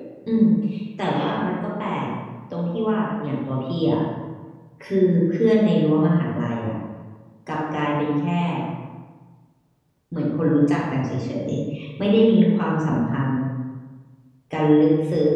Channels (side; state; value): both; identical; correlation 1.00